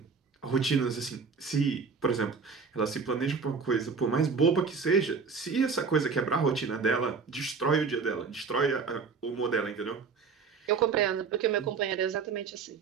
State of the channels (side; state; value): left; quieter; 5.3 dB